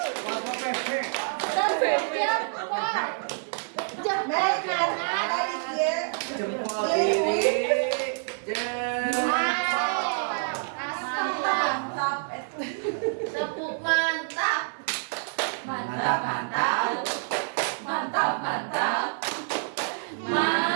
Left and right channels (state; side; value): silent; left; digital silence